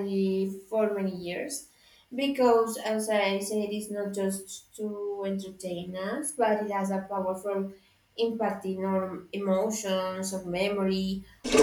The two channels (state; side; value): identical; both; correlation 1.00